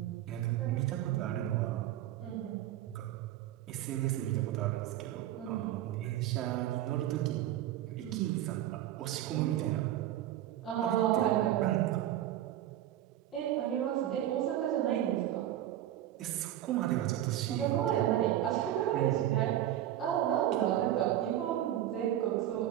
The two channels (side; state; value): left; quieter; 12.6 dB